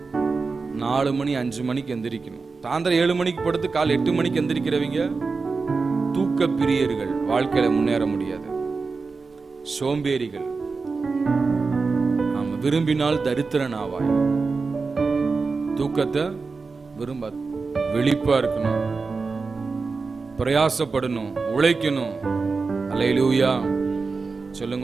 4 மணி 5 மணிக்கு எந்திரிக்கணும். சாயந்தரம் 7 மணிக்கு படுத்து காலை 8 மணிக்கு எந்திரிக்கிறவங்க தூக்க பிரியர்கள், வாழ்க்கையில முன்னேற முடியாது. சோம்பேறிகள். ஆமா, விரும்பினால் தரித்திரன் ஆவாய். தூக்கத்தை விரும்ப, விழிப்பா இருக்கணும், பிரயாசப்படணும், உழைக்கணும். அல்லேலூயா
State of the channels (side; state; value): left; quieter; 4.4 dB